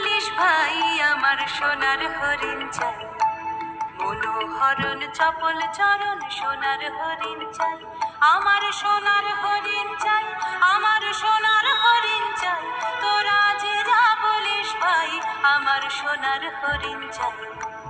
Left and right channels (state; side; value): identical; both; correlation 1.00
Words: ভাই আমার সোনার হরিণ চাই, মনোহরণ চপল চরণ সোনার হরিণ চাই, আমার সোনার হরিণ চাই, আমার সোনার হরিণ চাই, তোরা যে যা বলিস ভাই আমার সোনার হরিণ চাই।